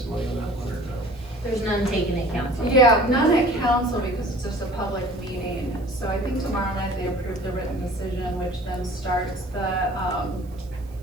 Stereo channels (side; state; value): right; noise; hiss, 29 dB below the sound